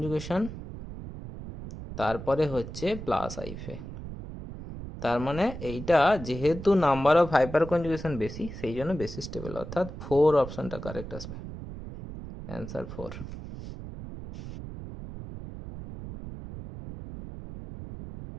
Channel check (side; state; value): right; noise; rumble, 10 dB below the sound